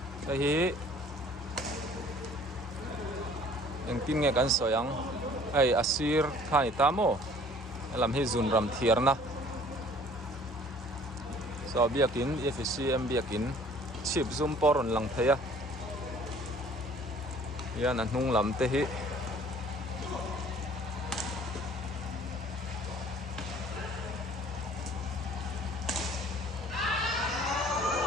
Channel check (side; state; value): both; normal; correlation 0.53